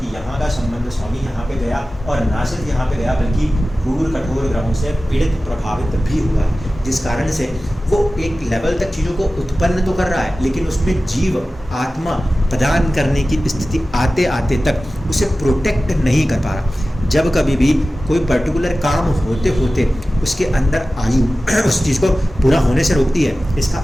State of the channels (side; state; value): both; normal; correlation 0.95